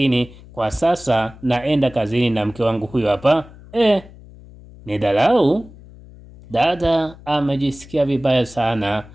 kwa sasa naenda kazini na mke wangu huyo hapa. Ni dharau. Dada amejisikia vibaya sana,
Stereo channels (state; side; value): noise; left; hum, 20 dB below the sound